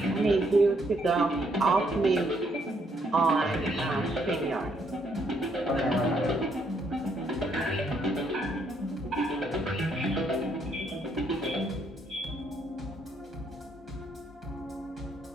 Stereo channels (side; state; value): both; normal; correlation 0.72